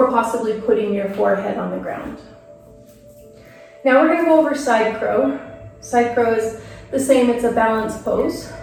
possibly putting your forehead on the ground. Now we're going to go over side crow. Side crow is the same, it's a balance pose.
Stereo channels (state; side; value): identical; both; correlation 1.00